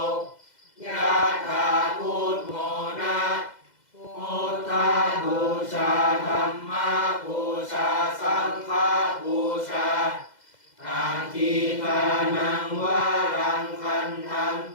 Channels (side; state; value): right; late; 2.0 ms